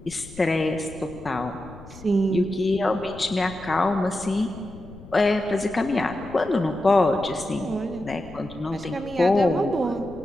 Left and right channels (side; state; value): left; noise; rumble, 18 dB below the sound